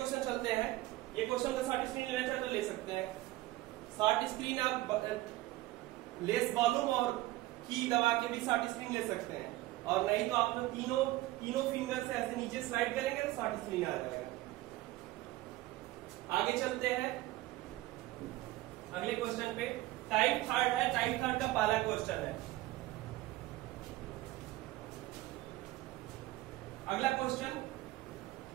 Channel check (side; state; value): left; quieter; 17.5 dB